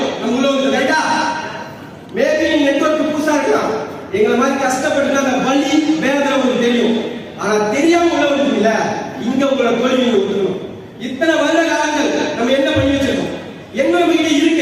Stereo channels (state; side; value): identical; both; correlation 1.00